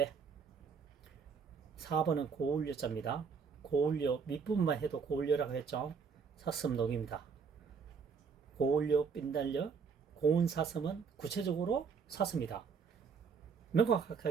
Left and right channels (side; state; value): left; quieter; 5.8 dB